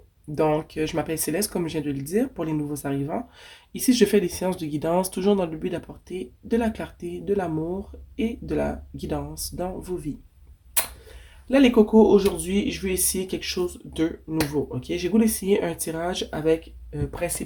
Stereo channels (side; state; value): both; identical; correlation 1.00